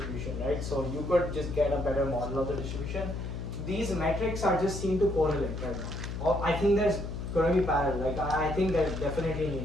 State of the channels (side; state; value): left; noise; hum, 5 dB below the sound